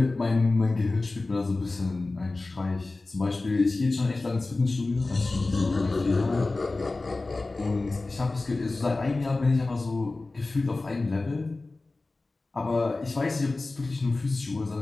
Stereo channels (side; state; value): right; quieter; 3.3 dB